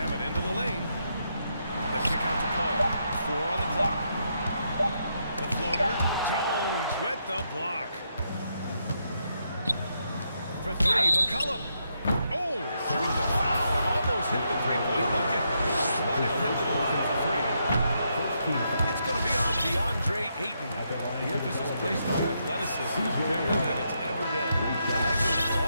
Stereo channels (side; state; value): both; inverted; correlation -0.79